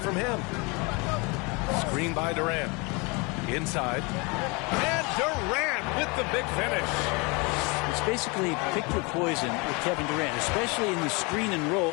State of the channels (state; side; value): quieter; right; 28.8 dB